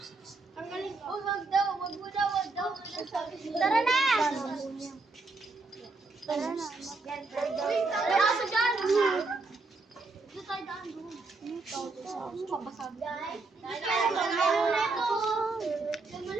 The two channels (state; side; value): quieter; left; 3.6 dB